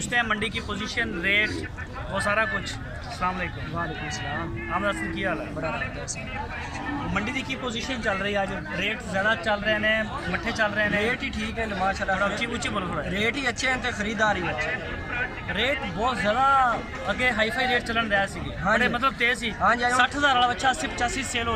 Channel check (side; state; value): both; identical; correlation 1.00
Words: हैं मंडी की पोजीशन, रेट, वो सारा कुछ। अस्सलाम वालेकुम। वालेकुम सलाम। अहमद हसन की हाल है? बड़ा मंडी दी की पोजीशन चल रही है आज? रेट ज़्यादा चल रहे हैं, मट्ठे चल रहे हैं? रेट ही ठीक है माशाल्लाह, ऊँची बोलो थोड़ा। रेट ही अच्छे हैं तो खरीदार ही अच्छे। रेट बहुत ज़्यादा अगे हाईफाई रेट चलन रहा सी, हाँ बड़े जी। मतलब तेज ही। हाँ जी, 60,000 वाला बच्चा 80-85 सेल